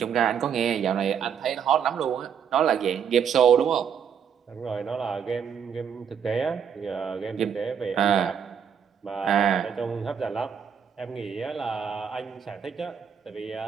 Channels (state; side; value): quieter; left; 7.6 dB